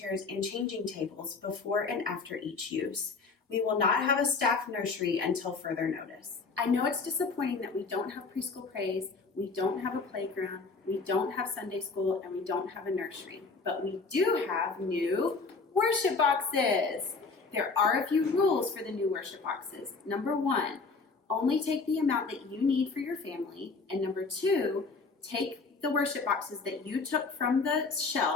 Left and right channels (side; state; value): right; quieter; 4.3 dB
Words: and changing tables before and after each use. We will not have a staff nursery until further notice. I know it's disappointing that we don't have preschool praise, we don't have a playground, we don't have Sunday school, and we don't have a nursery. But we do have new worship boxes. There are a few rules for the new worship boxes. Number 1, only take the amount that you need for your family. And number 2, take the worship boxes that you took from the